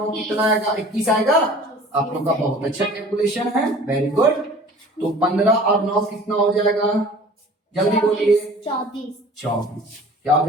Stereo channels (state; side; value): normal; both; correlation 0.46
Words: कितना आएगा? 21 आएगा। आप लोग का बहुत अच्छा कैलकुलेशन है, वेरी गुड। तो 15 और 9 कितना हो जाएगा? जल्दी बोलिए। 24। क्या हो